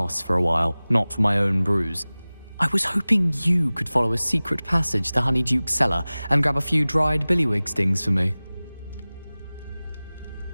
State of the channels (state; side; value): inverted; both; correlation -0.99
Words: for a while, not for my own brews. I was hoping you could follow a secret passage to Honeyduke's cellar and grab a few dried billywig stings for me.